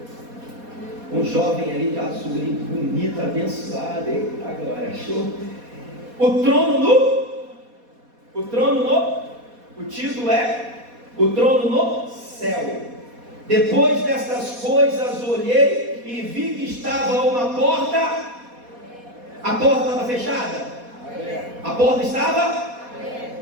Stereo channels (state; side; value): late; left; 4.2 ms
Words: Um jovem ali de azul, ali, bonito, abençoado. Eita glória, achou? O título é O Trono no Céu. Depois destas coisas olhei e vi que estava uma porta. A porta estava fechada? A porta estava